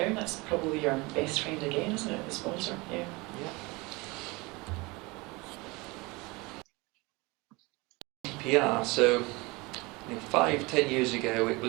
that's probably your best friend again, isn't it, the sponsor? Yeah. GDPR, so 5-10 years ago it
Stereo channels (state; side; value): quieter; left; 24.7 dB